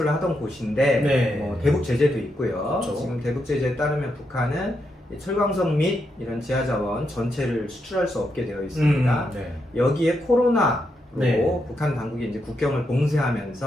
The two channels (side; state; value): both; normal; correlation 0.82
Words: 하던 곳인데 네. 뭐 대북 제재도 있고요. 그렇죠. 지금 대북 제재에 따르면 북한은 이 철광석 및 이런 지하자원 전체를 수출할 수 없게 되어 있습니다. 네. 여기에 코로나로 네. 북한 당국이 이제 국경을